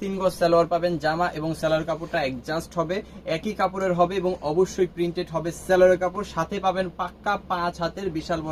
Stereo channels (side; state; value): both; identical; correlation 1.00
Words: 3 গজ সালোয়ার পাবেন। জামা এবং সালোয়ার কাপড়টা অ্যাডজাস্ট হবে, একই কাপড়ের হবে এবং অবশ্যই প্রিন্টেড হবে সালোয়ারের কাপড়। সাথে পাবেন পাক্কা 5 হাতের বিশাল